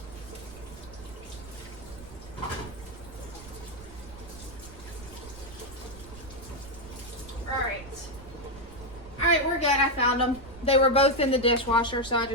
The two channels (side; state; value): right; noise; rumble, 17 dB below the sound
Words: Alright, we're good. I found them. They were both in the dishwasher, so I